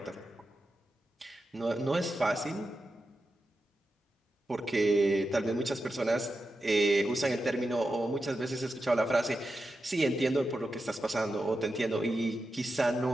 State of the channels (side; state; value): both; normal; correlation 0.90